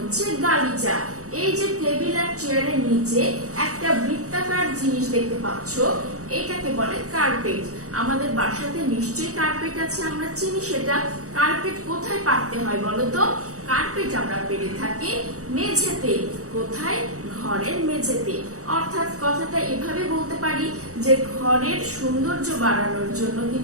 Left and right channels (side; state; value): left; late; 0.65 ms